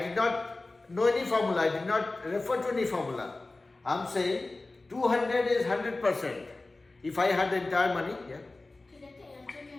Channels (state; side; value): quieter; right; 3.2 dB